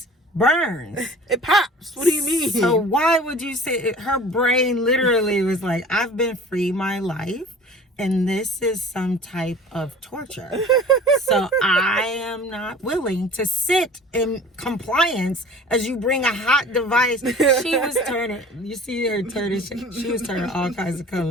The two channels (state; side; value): normal; both; correlation 0.43